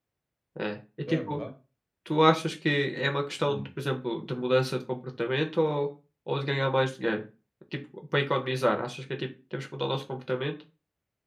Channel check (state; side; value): identical; both; correlation 1.00